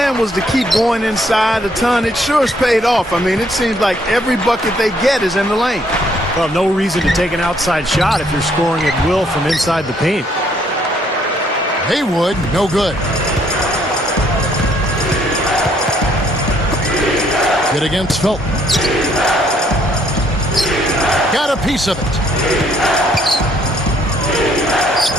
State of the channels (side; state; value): both; normal; correlation 0.67